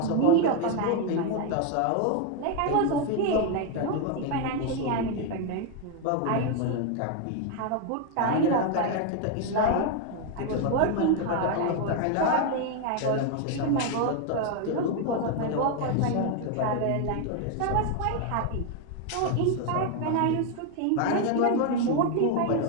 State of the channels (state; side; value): different; both; correlation 0.01